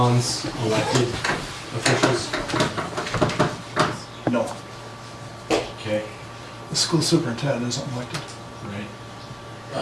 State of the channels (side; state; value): both; identical; correlation 1.00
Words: elected officials? No, Okay, the school superintendent isn't elected. right.